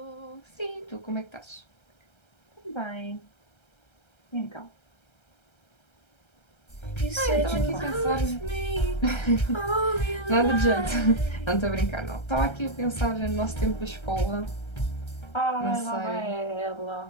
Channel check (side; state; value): right; late; 1.3 ms